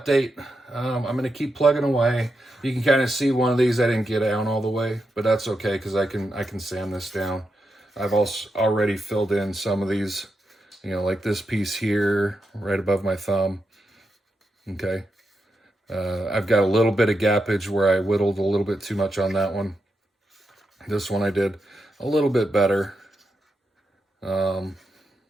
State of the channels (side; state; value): both; normal; correlation 0.86